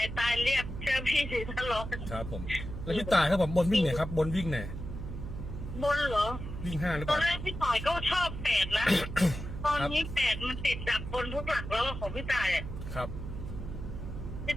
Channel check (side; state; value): right; noise; hum, 8 dB below the sound